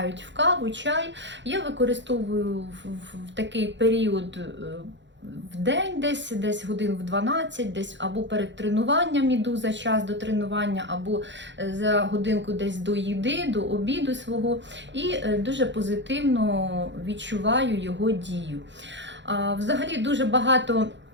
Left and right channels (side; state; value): left; late; 0.53 ms